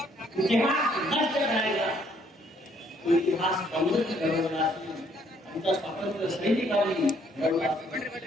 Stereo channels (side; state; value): both; normal; correlation 0.66